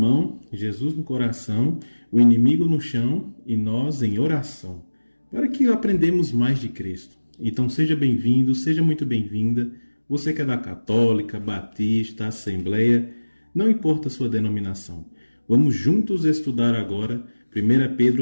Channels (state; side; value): inverted; both; correlation -1.00